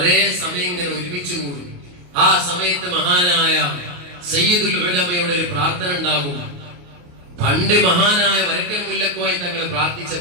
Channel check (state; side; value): late; left; 28 ms